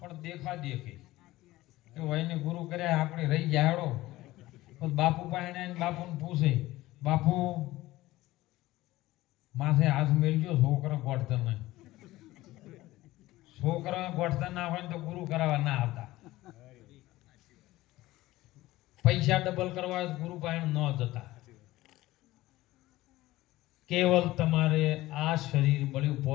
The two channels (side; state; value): right; quieter; 17.5 dB